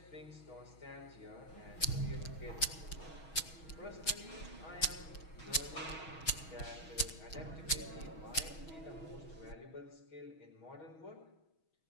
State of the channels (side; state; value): right; late; 6.3 ms